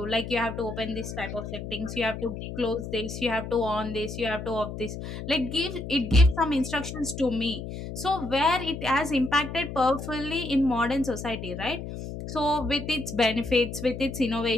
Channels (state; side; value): noise; left; hum, 8 dB below the sound